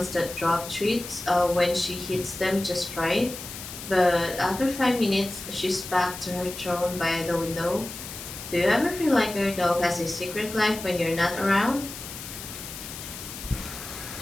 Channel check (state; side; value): noise; left; hiss, 11 dB below the sound